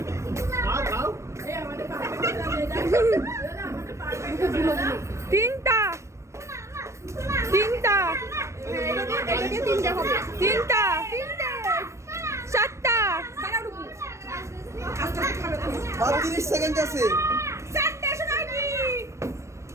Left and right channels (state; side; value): late; left; 0.14 ms